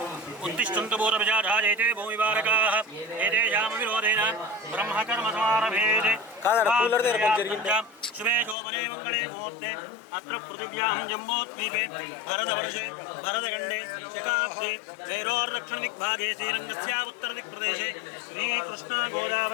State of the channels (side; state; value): right; drops out; at 8.6 s